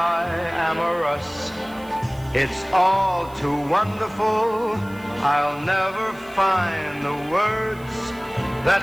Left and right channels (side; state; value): right; noise; hiss, 25 dB below the sound